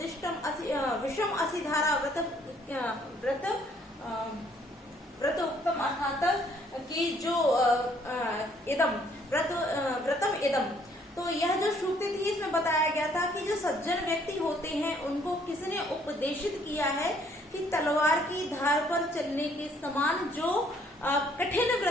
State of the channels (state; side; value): normal; both; correlation 0.64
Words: विषम असिधारा व्रत उत्तम, अर्थात कि जो इदम व्रतम इदम। तो यह जो श्रुति थी इसमें बताया गया था कि जो सज्जन व्यक्ति होते हैं उनको किसने उपदेशित किया है कि तलवार की धार पर चलने के समान जो कठिन